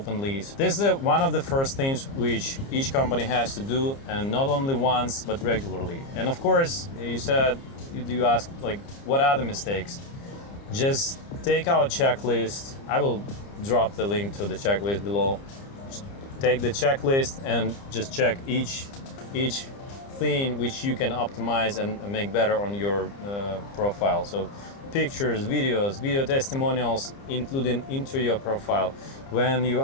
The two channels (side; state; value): right; late; 30 ms